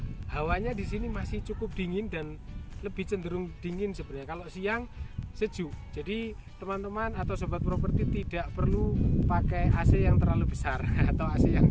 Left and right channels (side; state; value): both; identical; correlation 1.00